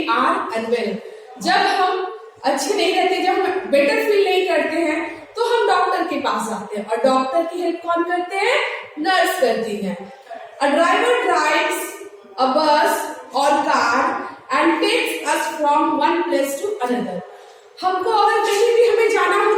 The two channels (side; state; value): both; identical; correlation 1.00